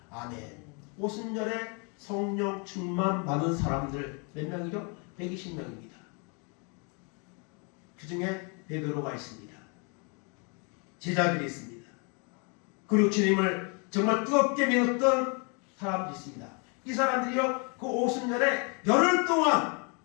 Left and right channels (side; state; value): right; quieter; 34.8 dB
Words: 아멘. 오순절에 성령 충만 받은 사람들 몇 명이죠? 120명입니다. 그 중에 베드로가 있습니다. 제자들이 있습니다. 그리고 주님을 정말 뜨겁게 믿었던 사람들이 있습니다. 이 사람들이요, 그 오순절에 열흘 동안